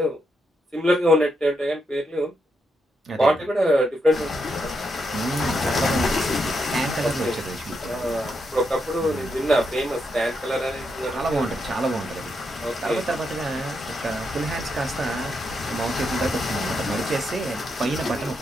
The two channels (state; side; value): normal; both; correlation 0.81